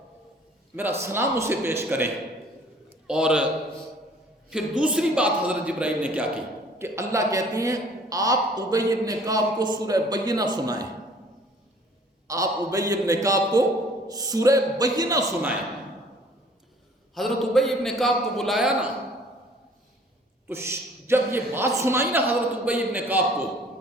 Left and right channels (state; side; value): normal; both; correlation 0.54